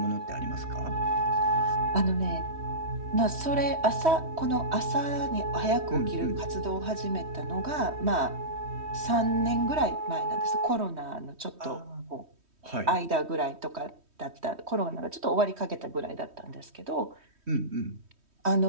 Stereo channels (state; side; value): late; left; 3.1 ms